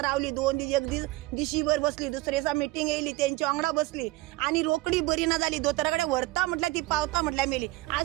रावली 2 दीस एक दीस दिशीभर बसली. दुसरे दिसा मिटींग येयली तेंच्या वांगडा बसली आनी रोकडी बरी ना जाली. दोतोरा कडेन व्हरता म्हटल्यार ती पावता म्हटल्यार मेली.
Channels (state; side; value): quieter; left; 19.8 dB